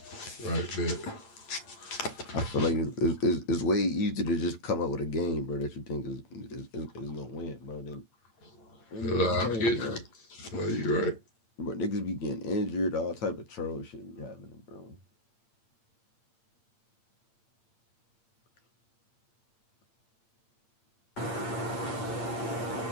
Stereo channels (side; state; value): right; late; 8.7 ms